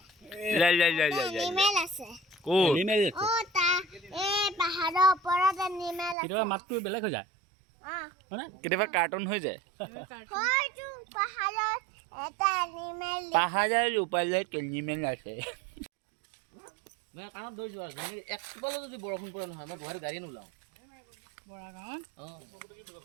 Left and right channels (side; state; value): left; drops out; at 6.2 s